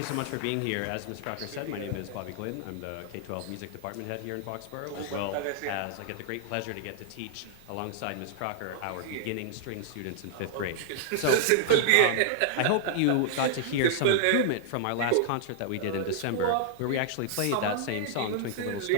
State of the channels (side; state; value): both; different; correlation 0.00